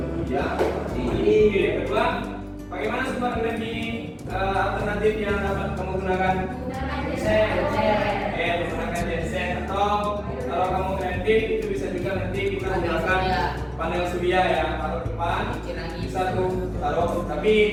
bekerja. Yang kedua, bagaimana sumber energi alternatif yang dapat kamu gunakan? Menggunakan genset. listrik itu bisa juga nanti kita gunakan panel surya ya, taruh depan, bisa tuh taruh, tapi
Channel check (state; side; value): identical; both; correlation 1.00